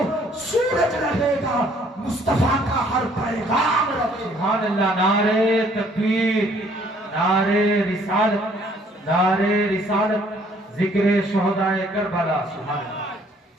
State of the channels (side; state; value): both; normal; correlation 0.61